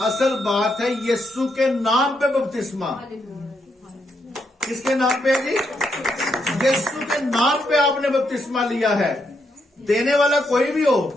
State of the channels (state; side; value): normal; both; correlation 0.79